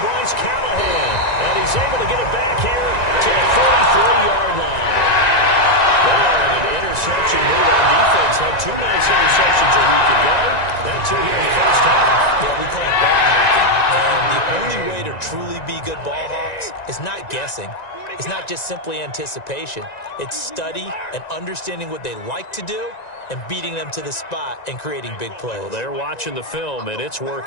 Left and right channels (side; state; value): right; late; 1.9 ms